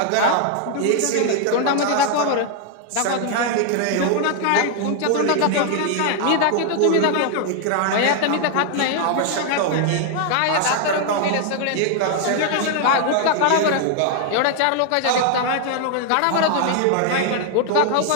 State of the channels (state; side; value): different; both; correlation 0.00